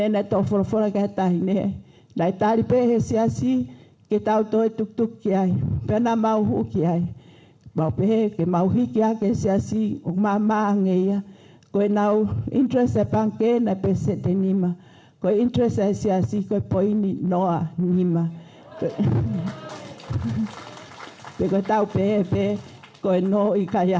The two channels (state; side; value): identical; both; correlation 1.00